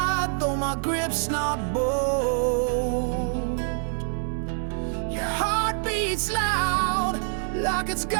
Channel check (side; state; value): left; silent; digital silence